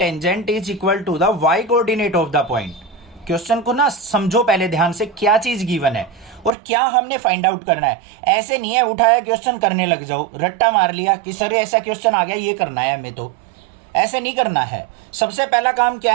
is equal to the y coordinate of the point. Question को ना समझो पहले ध्यान से, क्या चीज given है और क्या हमने फाइंड आउट करना है। ऐसे नहीं है उठाया क्वेश्चन करने लग जाओ, रट्टा मार लिया कि सर ऐसा क्वेश्चन आ गया ये करना है हमें, तो ऐसे नहीं करना है। सबसे पहला काम क्या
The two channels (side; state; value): left; drops out; at 6.5 s